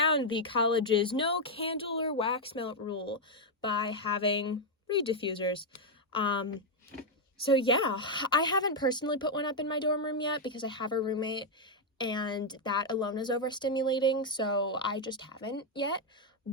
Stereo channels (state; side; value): normal; both; correlation 0.01